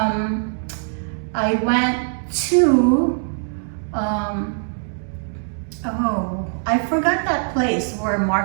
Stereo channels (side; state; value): left; silent; digital silence